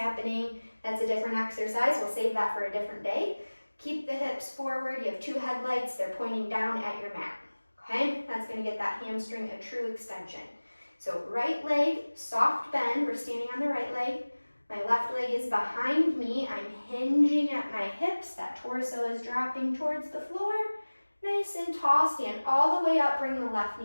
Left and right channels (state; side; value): inverted; both; correlation -1.00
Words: That's a different exercise. We'll save that for a different day. Keep the hips forward. You have 2 headlights. They're pointing down at your mat. Okay, that's going to get that hamstring a true extension. So right leg, soft bend. We're standing on the right leg. My left leg is behind me. I'm hinging at my hips. That torso is dropping towards the floor. Nice and tall. Stand all the way up. Bring the left